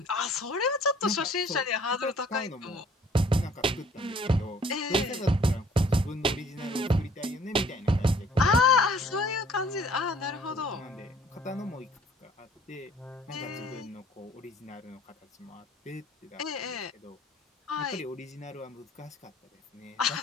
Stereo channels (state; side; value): normal; both; correlation 0.56